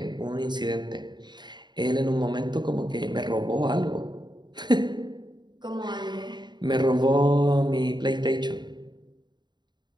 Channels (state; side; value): late; left; 0.21 ms